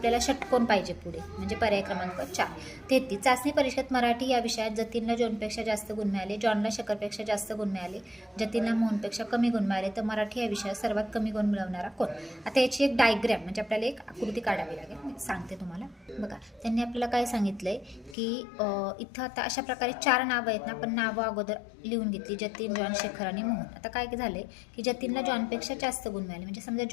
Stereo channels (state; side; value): drops out; right; at 18.2 s